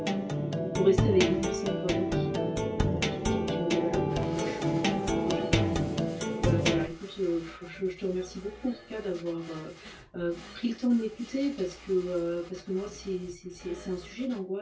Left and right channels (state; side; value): identical; both; correlation 1.00